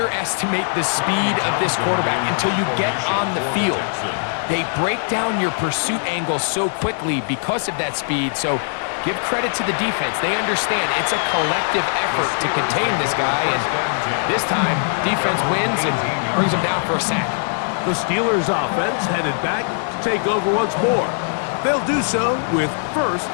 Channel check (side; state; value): right; silent; digital silence